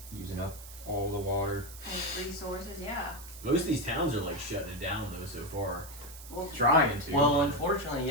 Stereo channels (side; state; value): right; noise; hiss, 15 dB below the sound